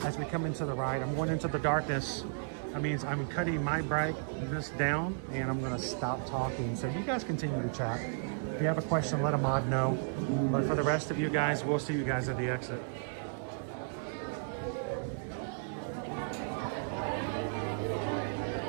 As we come into the ride, I'm going into the darkness. That means I'm cutting my brightness down and I'm going to stop talking. So you guys continue to chat. If you have a question, let a mod know. But for the rest of you guys, we'll see you guys at the exit.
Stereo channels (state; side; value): silent; left; digital silence